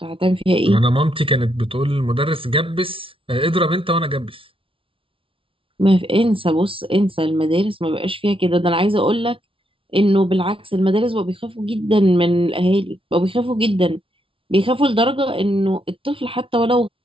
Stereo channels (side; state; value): left; late; 0.25 ms